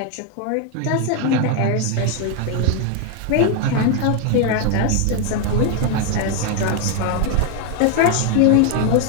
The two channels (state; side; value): different; both; correlation 0.01